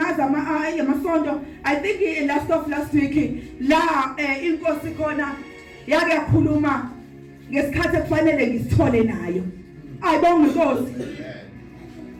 amasonto I think last week la inkosi khona yake yakhuluma ngesikhathi ekufanele ngisithole nayo ayibonga inkosi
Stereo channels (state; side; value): identical; both; correlation 1.00